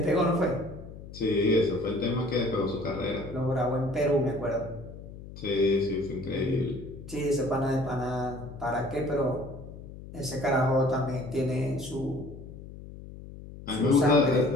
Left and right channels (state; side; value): noise; left; hum, 14 dB below the sound